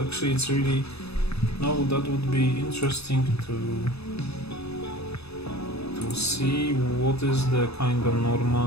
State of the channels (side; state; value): right; late; 0.79 ms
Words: Actually, it's really that would be interesting to see what is the kind of